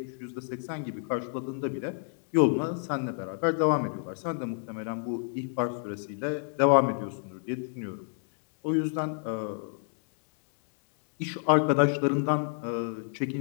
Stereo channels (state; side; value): silent; right; 57 dB below the other